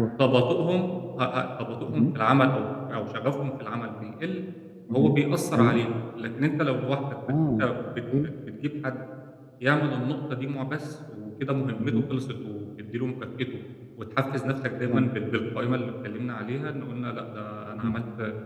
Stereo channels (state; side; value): identical; both; correlation 1.00